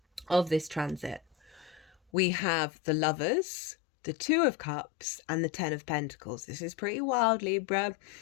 of this transit, we have the Lovers, the 2 of Cups, and the 10 of Pentacles. This is pretty wild, Libra.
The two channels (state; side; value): drops out; right; at 2.0 s